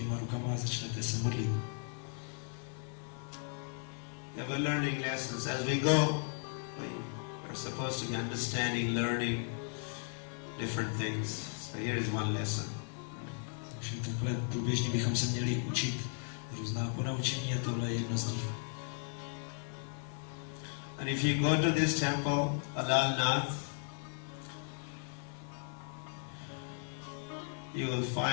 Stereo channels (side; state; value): right; silent; 54 dB below the other